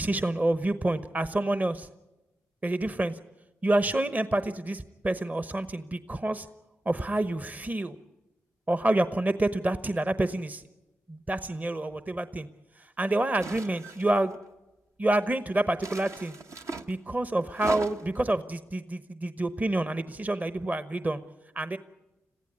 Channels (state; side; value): normal; both; correlation 0.92